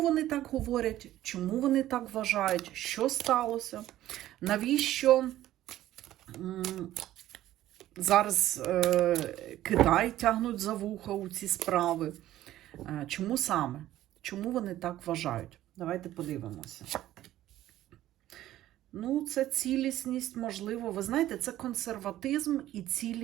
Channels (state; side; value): quieter; left; 13.9 dB